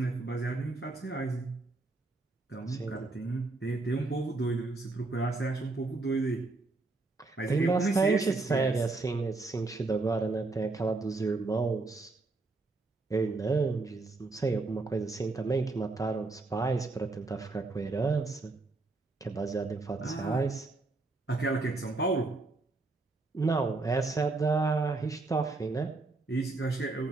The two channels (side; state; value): left; quieter; 3.4 dB